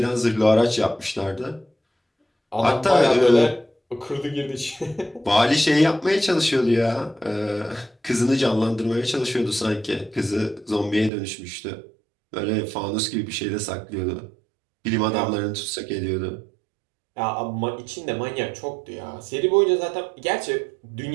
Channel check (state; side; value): drops out; left; at 11.1 s